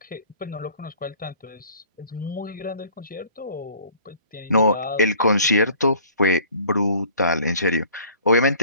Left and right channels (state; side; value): inverted; both; correlation -0.52